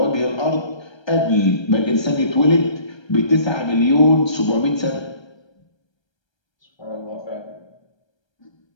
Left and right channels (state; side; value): late; right; 1.3 ms